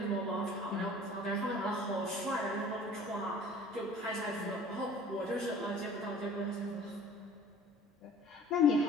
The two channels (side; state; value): both; normal; correlation 0.48